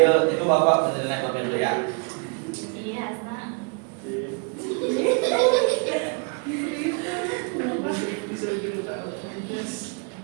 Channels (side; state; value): left; quieter; 35.2 dB